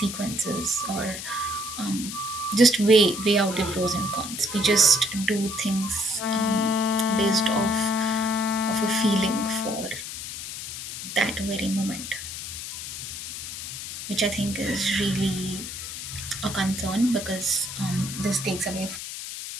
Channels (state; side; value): noise; left; hiss, 8 dB below the sound